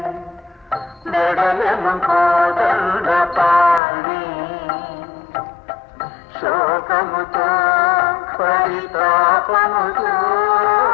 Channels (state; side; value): drops out; right; at 3.8 s